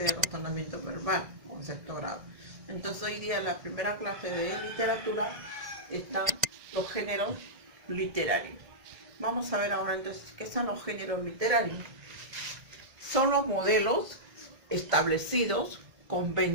de razonamiento verbal con sexto grado. Entonces hoy día la primera clase de literatura están los géneros literarios. Vamos a ver ahora entonces qué son los géneros literarios. Son los modelos establecidos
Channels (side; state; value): left; late; 1.9 ms